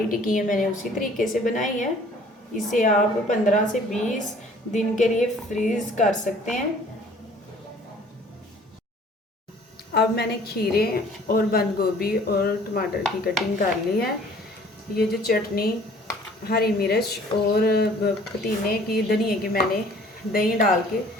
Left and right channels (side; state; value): both; normal; correlation 0.53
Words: टिक्कियाँ मैंने उसी तरीके से बनाई है। इसे आप 15 से 20 दिन के लिए फ्रीज़ कर सकते हैं। अब मैंने खीरे और बंद गोभी और टमाटर की कटिंग कर ली है। ये जो चटनी, हरी मिर्च और पुदीने की, धनिए की मैंने दही डाल के